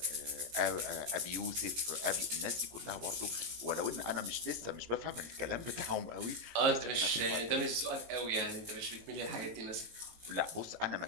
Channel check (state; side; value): late; left; 18 ms